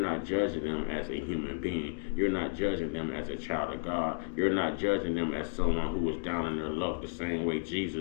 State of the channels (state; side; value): silent; right; digital silence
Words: judging them as a human being. You're not judging them as a child of God. You're not judging them as someone who was down in their luck the same way